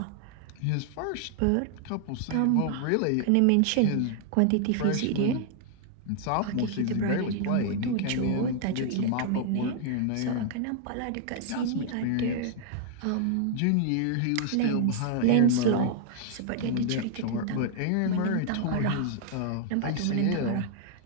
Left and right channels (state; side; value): different; both; correlation -0.01